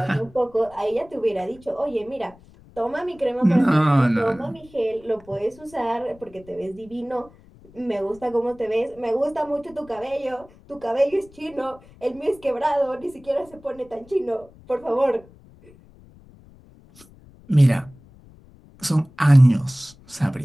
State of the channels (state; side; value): noise; left; rumble, 25 dB below the sound